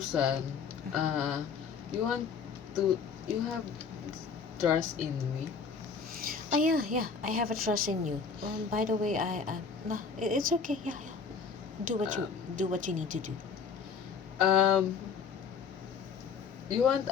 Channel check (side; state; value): right; quieter; 5.7 dB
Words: you have trust in me? Oh yeah. I have a trust in you. By the way, no, it's okay. Yeah. Do what you Um, do what you need to do. um, you want